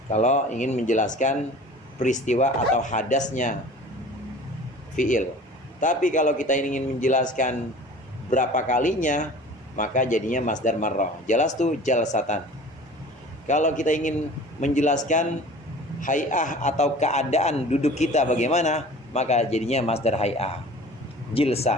Kalau ingin menjelaskan peristiwa atau hadasnya fi'il. Tapi kalau kita ingin menjelaskan berapa kalinya, maka jadinya masdar marrah. Jelas tuh jalsatan. Kalau kita ingin menjelaskan hay'ah atau keadaan duduk kita bagaimana, maka jadinya masdar hay'ah.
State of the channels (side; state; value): both; normal; correlation 0.43